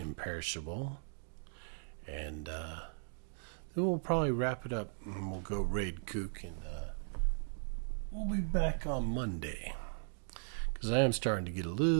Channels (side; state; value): left; silent; digital silence